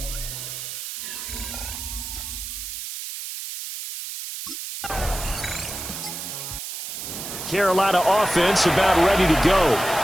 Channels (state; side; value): noise; right; hiss, 7 dB below the sound